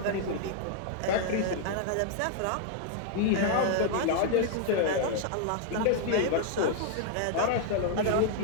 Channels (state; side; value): different; both; correlation 0.00